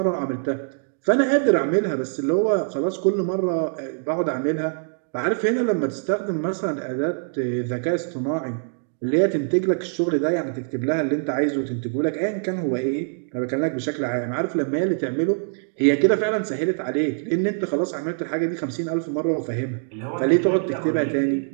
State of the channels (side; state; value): left; silent; digital silence